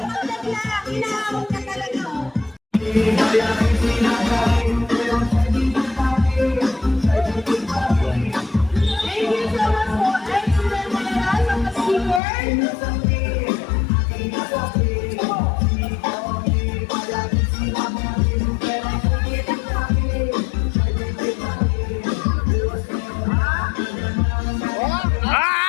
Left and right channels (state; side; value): drops out; right; at 12.2 s